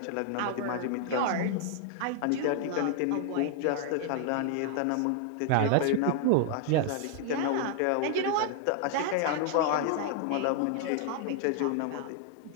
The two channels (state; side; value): different; both; correlation 0.00